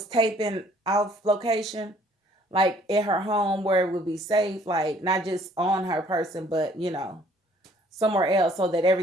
taping off location, like at her home where it would be safe, like not just on her person, but somewhere else, so that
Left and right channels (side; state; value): both; normal; correlation 0.59